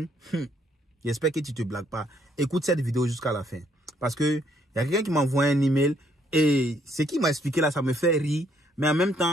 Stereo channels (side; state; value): both; normal; correlation 0.69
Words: j'espère que tu te blagues pas. Écoute cette vidéo jusqu'à la fin. Parce que il y a quelqu'un qui m'a envoyé un email et ce qu'il m'a expliqué là, ça me fait rire. Mais en même